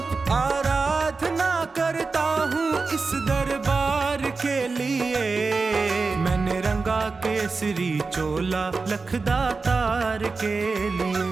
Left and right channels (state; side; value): quieter; left; 4.2 dB